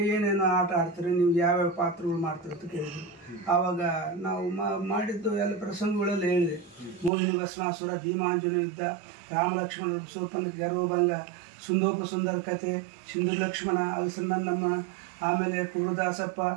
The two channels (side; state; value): left; drops out; at 7.1 s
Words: ಏನೇನು ಆಟ ಆಡ್ತೀರಿ, ನೀವು ಯಾವ್ಯಾವ ಪಾತ್ರಗಳು ಮಾಡ್ತೀರಿ ಅಂತ ಕೇಳಿದ್ರು. ಆವಾಗ ನಾವು ಮಾಡಿದ್ದು ಎಲ್ಲ ಪ್ರಸಂಗಗಳೆಲ್ಲ ಹೇಳಿದೆ. ಮೋಹಿನಿ ಭಸ್ಮಾಸುರ, ಭೀಮಾಂಜನ ಯುದ್ಧ, ರಾಮಲಕ್ಷ್ಮಣ ಸೋಪನ ಗರ್ವಭಂಗ, ಸುಂದೋಪ ಸುಂದರ ಕಥೆ, ಸಿಂಧು ಲಕ್ಷ್ಮಣ, ಅಲಸನಂದಮ್ಮ, ಆಮೇಲೆ ಕುರುದಾಸಪ್ಪ,